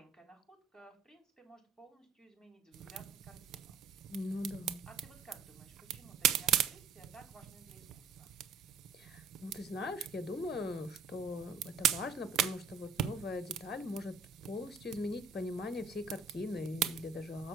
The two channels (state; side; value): quieter; left; 5.1 dB